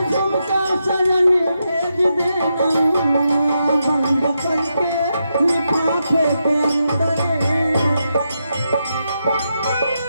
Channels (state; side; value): inverted; both; correlation -0.84